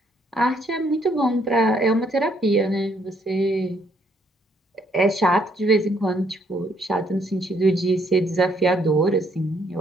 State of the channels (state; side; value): normal; both; correlation 0.69